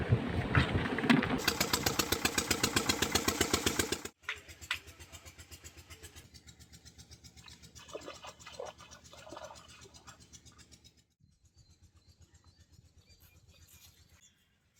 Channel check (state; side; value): identical; both; correlation 1.00